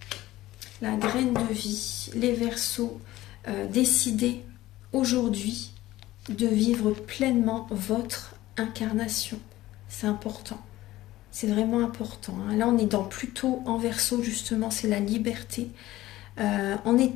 La graine de vie, les Verseaux, décidez aujourd'hui de vivre pleinement votre incarnation. C'est important. C'est vraiment important, hein. Là, on est plutôt en Verseau, justement, c'est la liberté. En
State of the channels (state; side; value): quieter; right; 16.2 dB